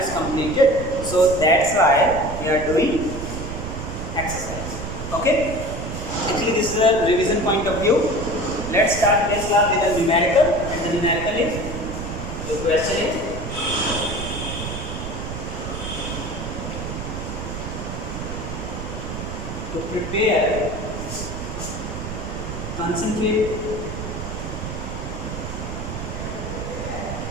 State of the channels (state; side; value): noise; right; rumble, 6 dB below the sound